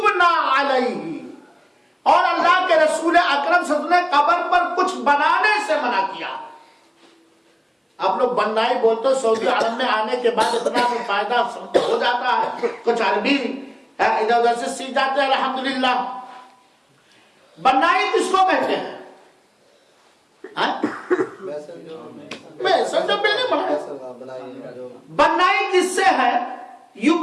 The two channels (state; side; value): identical; both; correlation 1.00